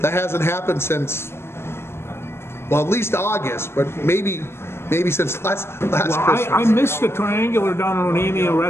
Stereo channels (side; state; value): right; late; 0.12 ms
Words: hasn't happened since, well, at least August, but maybe since last Christmas. I missed the triangular down on Onamia